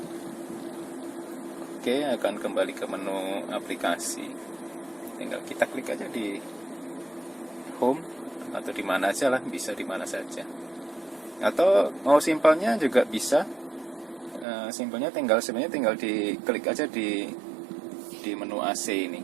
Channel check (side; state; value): left; drops out; at 14.5 s